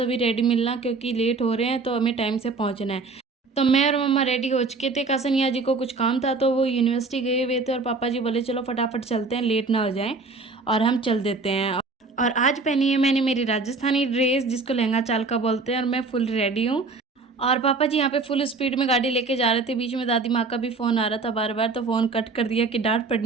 रेडी मिलना, क्योंकि लेट हो रहे हैं तो हमें टाइम से पहुँचना है। तो मैं और मम्मा रेडी हो चुके थे। कासनिया जी को कुछ काम था तो वो यूनिवर्सिटी गए हुए थे और पापा जी बोले चलो फटाफट चलते हैं, लेट ना हो जाएं और हम चल देते हैं। और आज पहनी है मैंने मेरी राजस्थानी ड्रेस जिसको लहंगा चाल का बोलते हैं, और मैं फुल रेडी हूँ। और पापा जी यहाँ पे फुल स्पीड में गाड़ी लेके जा रहे थे। बीच में दादी माँ का भी फ़ोन आ रहा था बार बार, तो फ़ोन कट कर दिया कि डांट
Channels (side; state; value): left; quieter; 3.9 dB